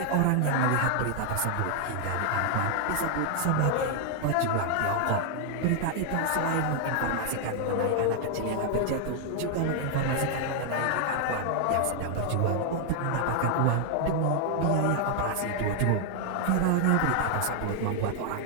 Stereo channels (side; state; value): both; different; correlation 0.00